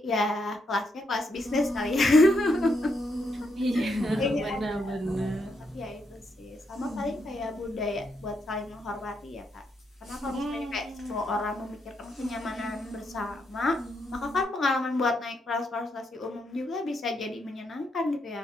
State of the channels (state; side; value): normal; both; correlation 0.79